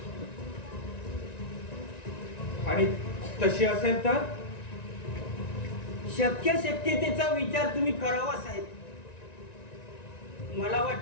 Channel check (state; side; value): late; right; 1.9 ms